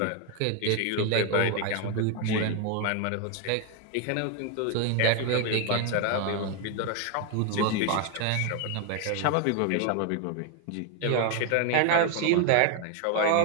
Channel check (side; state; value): both; different; correlation 0.01